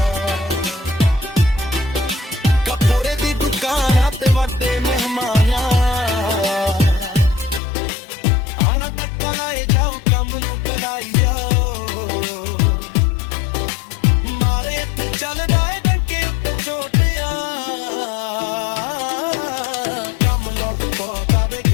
ਕੱਪੜੇ ਦੀ ਦੁਕਾਨਾਂ ਤੇ ਵੱਡੇ ਮਹਿਮਾਨਾਂ ਆਣਾ ਤੱਕ ਲਾਏ ਜਾਓ ਕੰਮ ਨੂੰ ਕਰਾਈ ਜਾਓ ਮਾਰੇ ਇੱਥੇ ਚੱਲਦਾ ਏ ਡੰਕੇ ਉੱਤੇ ਛੋਟਿਆਂ ਕੰਮ ਲੋਟ ਪੋਟਾ ਵੇ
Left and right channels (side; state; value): right; drops out; at 7.6 s